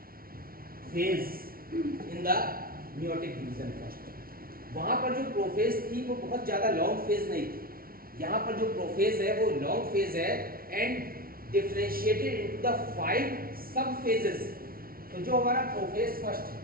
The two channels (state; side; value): late; left; 0.43 ms